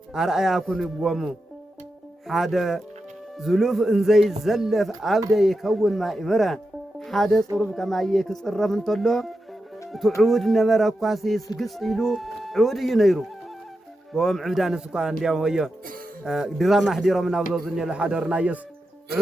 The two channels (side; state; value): both; normal; correlation 0.89